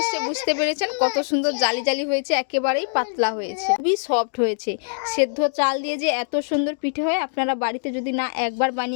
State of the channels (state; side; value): silent; right; digital silence